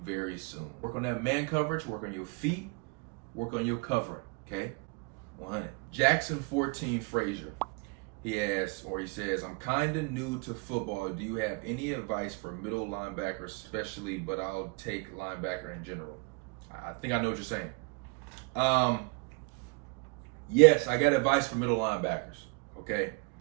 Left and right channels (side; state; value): left; quieter; 29.8 dB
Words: very soon. Work on that man coverage, work on your feet, work on your covering, okay? 100. Jackson 14 Frazier. He asks, or he says, I'm kind of new to football. Do you have any advice for middle linebacker especially, but I'll take linebacker in general? I think I know what you're saying. Yes, I got advice for middle linebackers, okay?